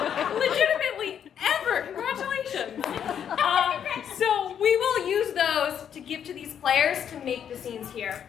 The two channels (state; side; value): quieter; right; 8.7 dB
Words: Legitimately, ever. Congratulations. So we will use those to give to these players to make the scenes here.